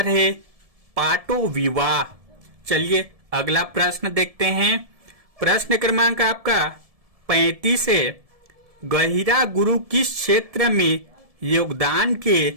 है पाटो विवाह। चलिए अगला प्रश्न देखते हैं। प्रश्न क्रमांक आपका 35 है गहिरा गुरु किस क्षेत्र में योगदान के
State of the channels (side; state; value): left; late; 1.7 ms